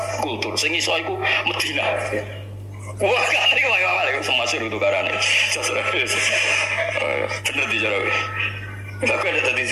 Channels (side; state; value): both; identical; correlation 1.00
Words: kultur. Sing iso iku Madinah. Wah, gak terima Imam Malik semua suruh tukarane. Bener dijarawe. Aku ada tadi